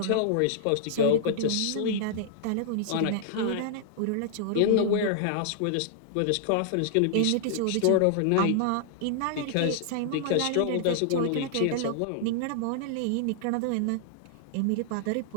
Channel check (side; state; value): both; different; correlation -0.01